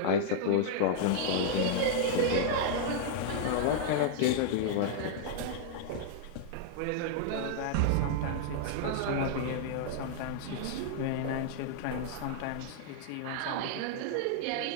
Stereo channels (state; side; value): different; both; correlation -0.01